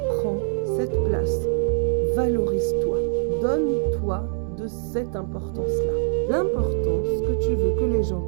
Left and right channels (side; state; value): left; silent; 63 dB below the other